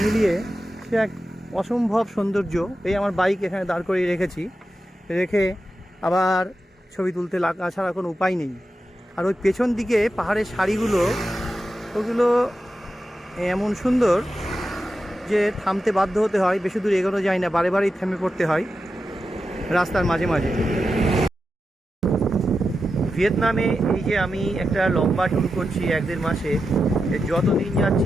মিলিয়ে সে এক অসম্ভব সৌন্দর্য। এই আমার বাইক এখানে দাঁড় করিয়ে রেখেছি, রেখে আবার ছবি তুলতে লাগা ছাড়া কোনো উপায় নেই। আর ওই পেছন দিকে পাহাড়ের সারিগুলো, ওগুলো এমন সুন্দর যে থামতে বাধ্য হতে হয়, বেশি দূর এগোনো যায় না, বারে বারেই থেমে পড়তে হয় রাস্তার মাঝে মাঝে। ভিয়েতনামে এই যে আমি একটা লম্বা ট্যুর করছি 1-1.5 মাসে, যত দিন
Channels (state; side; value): normal; both; correlation 0.90